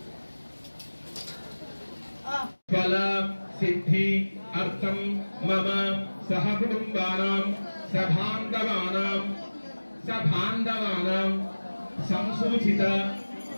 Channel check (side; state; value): both; inverted; correlation -1.00